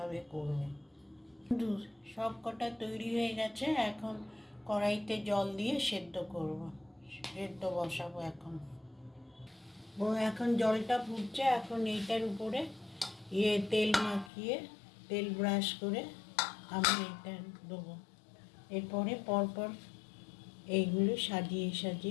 করব। সব কটা তৈরি হয়ে গেছে। এখন কড়াইতে জল দিয়ে সেদ্ধ বসাবো। এখন জলটা ফুটছে। এখন এইটার উপরে তেল মাখিয়ে, তেল ব্রাশ করে আমি এটা দেবো। এরপরে পরপর এইগুলো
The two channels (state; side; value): drops out; right; at 14.3 s